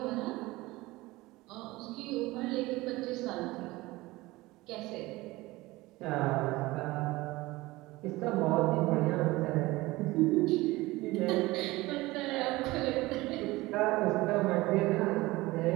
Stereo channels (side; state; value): left; quieter; 20.0 dB